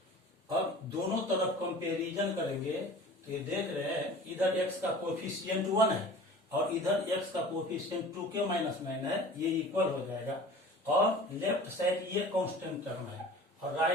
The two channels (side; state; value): both; normal; correlation 0.42